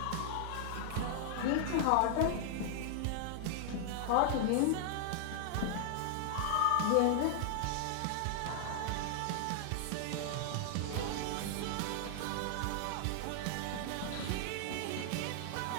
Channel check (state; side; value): different; both; correlation 0.00